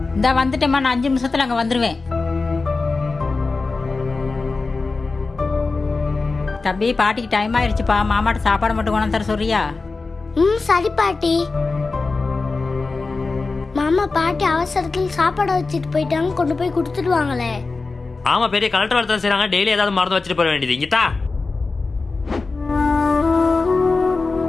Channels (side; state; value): right; quieter; 3.9 dB